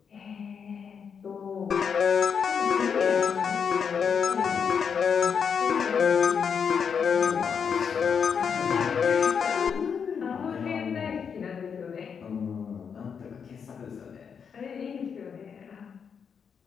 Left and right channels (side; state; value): right; quieter; 6.7 dB